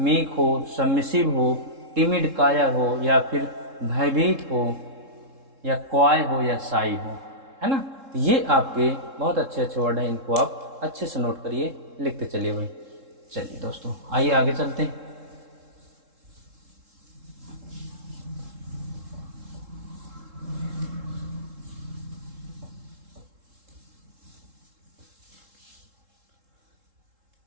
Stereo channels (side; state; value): left; late; 3.7 ms